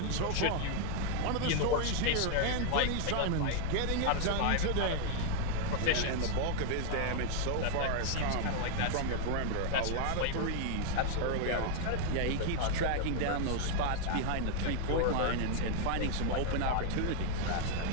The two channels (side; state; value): both; different; correlation 0.00